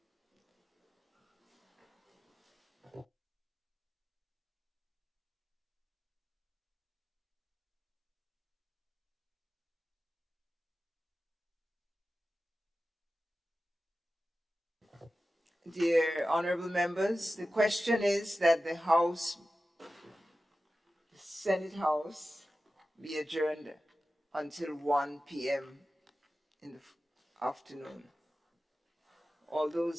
Dear honorable members, the question is that the Senate House be adjourned until 1 p.m. in the afternoon. All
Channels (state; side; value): normal; both; correlation 0.94